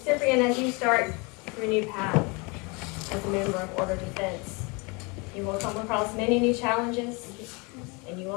Cyprian, as you start your new path as a member of Order Defense, you will come across many new challenges, and you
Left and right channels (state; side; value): quieter; right; 29.3 dB